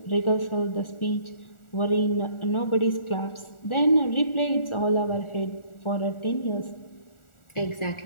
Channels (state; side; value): late; right; 1.4 ms